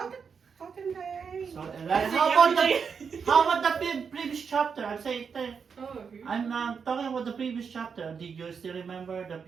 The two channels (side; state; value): left; quieter; 6.2 dB